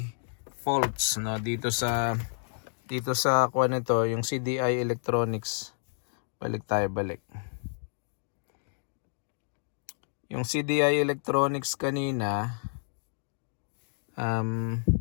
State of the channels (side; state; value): right; silent; digital silence